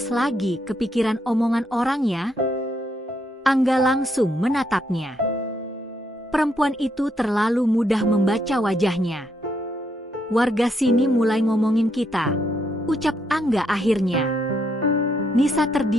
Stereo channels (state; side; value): normal; both; correlation 0.76